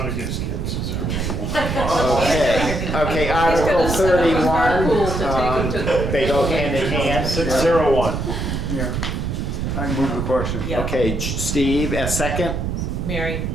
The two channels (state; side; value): noise; right; rumble, 2 dB below the sound